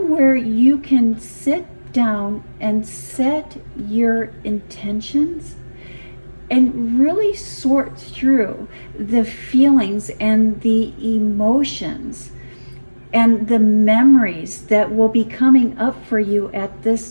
where you can sit down and set your intentions and really sort through the feelings and the emotions and the memories that will be coming up for you at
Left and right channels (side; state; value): both; inverted; correlation -1.00